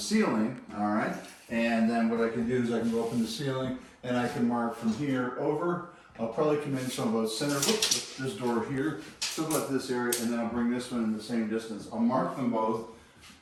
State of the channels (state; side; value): identical; both; correlation 1.00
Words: all right? And then what I can do is I can go up in the ceiling and I can mark from here over. I'll probably come in so about center, whoops, this door here, so about this area, and then I'll bring this one in the same distance. I'll mark them both,